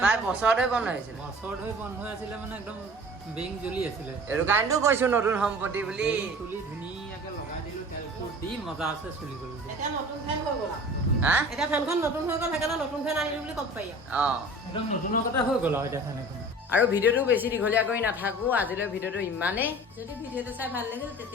প্ৰায় বছৰ ধৰি বন্ধ হৈ আছিলে। বছৰ ধৰি বন্ধ হৈ আছিলে মানে একদম বেৰিং জ্বলি আছিলে। এইটো কাৰণেতো কৈছোঁ নতুন সম্পত্তি বুলি। তুলি ধুনীয়াকৈ লগাই দিলোঁ, তেল দি মজা আছে, চলি গ'ল। এতিয়া নতুন ফেন হৈ গ'ল হা এতিয়া ফেনখন নতুন হৈ গ'ল, সেইকাৰণে নতুন ফেন আনিলোঁ বুলি ক'ব পাৰি একদম নতুনৰ কথা হৈ গ'ল আৰু এতিয়া ফেন এখন। আৰু ভিডিঅ'টো বেছি দীঘলীয়া কৰি নাথাকোঁ, আজিলৈ ভিডিঅ'টো ইমানেই। যদি ভিডিঅ'টো চাই ভাল লাগিল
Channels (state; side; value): normal; both; correlation 0.42